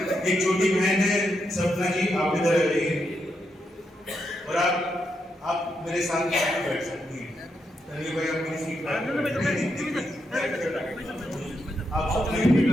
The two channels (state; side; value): normal; both; correlation 0.82